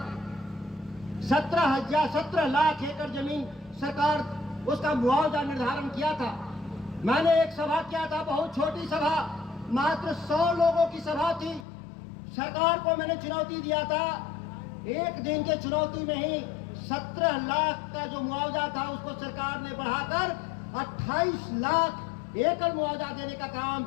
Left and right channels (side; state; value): right; drops out; at 11.7 s